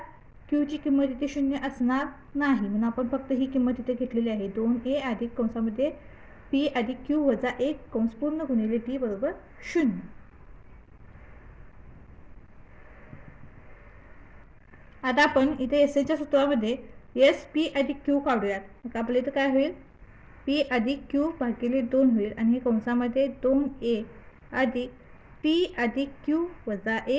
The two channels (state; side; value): identical; both; correlation 1.00